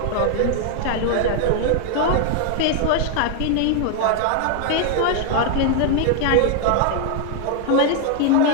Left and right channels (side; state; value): both; different; correlation 0.00